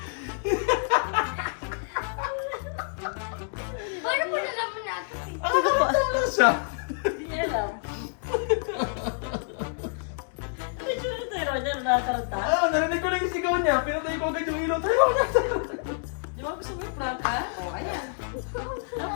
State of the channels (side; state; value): right; silent; digital silence